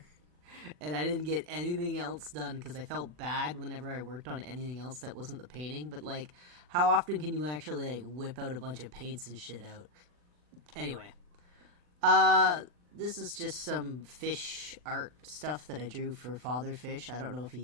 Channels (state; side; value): late; left; 40 ms